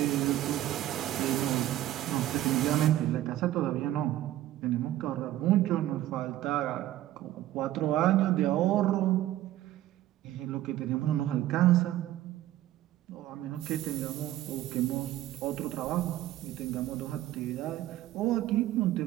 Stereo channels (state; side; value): quieter; left; 14.0 dB